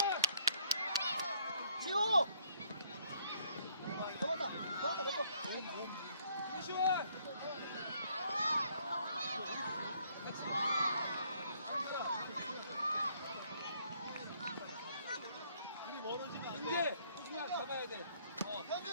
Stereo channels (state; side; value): inverted; both; correlation -0.66